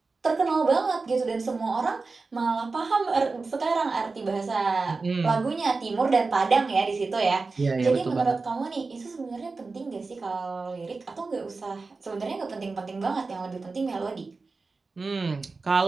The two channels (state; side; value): quieter; left; 4.0 dB